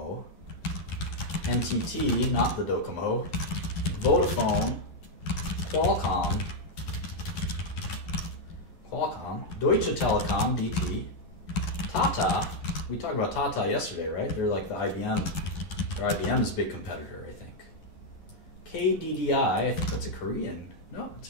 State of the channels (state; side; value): late; right; 11 ms